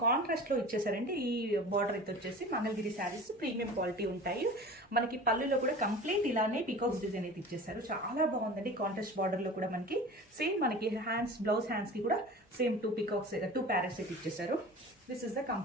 కాంట్రాస్ట్ లో ఇచ్చేసారండి. ఈ బార్డర్ అయితే వచ్చేసి మంగళగిరి శారీస్ ప్రీమియం క్వాలిటీ ఉంటాయి. మనకి పళ్ళులో కూడా కంప్లీట్ ఇలానే పీకాక్స్ డిజైన్ అయితే ఇచ్చేసారు. చాలా బాగుందండి. కాంట్రాస్ట్ బార్డర్ లో కూడా మనకి సేమ్ మనకి హ్యాండ్స్ బ్లౌజ్ హ్యాండ్స్ కి కూడా సేమ్ 2 పీకాక్స్ 2 ప్యారెట్స్ అయితే ఇచ్చేసారు. This is the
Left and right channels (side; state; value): both; normal; correlation 0.38